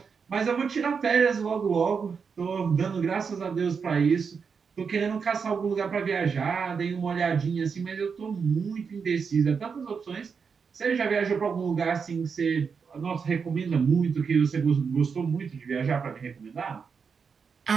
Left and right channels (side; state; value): left; quieter; 5.9 dB